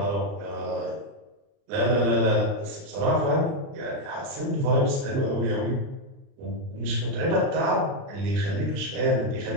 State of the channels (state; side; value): late; left; 29 ms